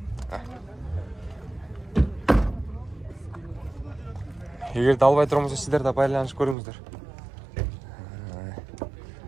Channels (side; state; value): left; drops out; at 6.6 s